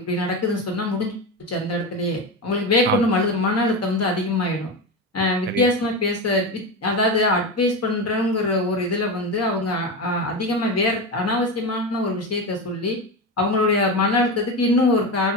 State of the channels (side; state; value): both; normal; correlation 0.19